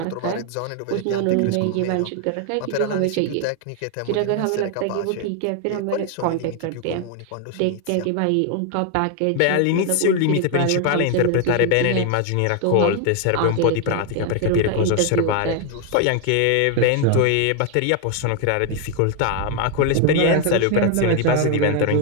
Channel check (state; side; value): different; both; correlation 0.00